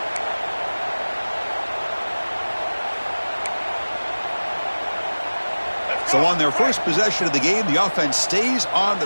So on their first possession of the game, the offense stays on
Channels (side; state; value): both; inverted; correlation -1.00